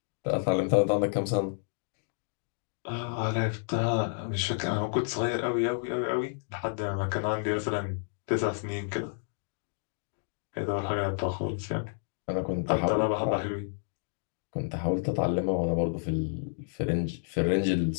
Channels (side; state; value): right; silent; digital silence